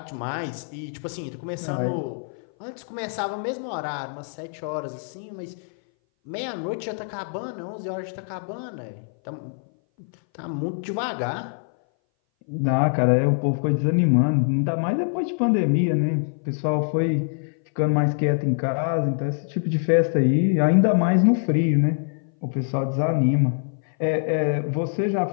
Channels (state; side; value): silent; right; 59 dB below the other